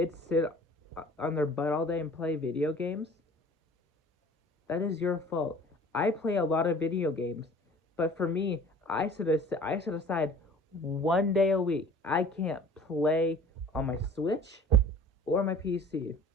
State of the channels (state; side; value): normal; both; correlation 0.46